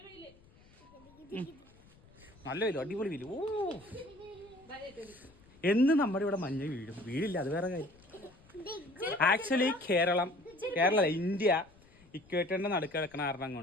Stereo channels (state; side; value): noise; left; rumble, 26 dB below the sound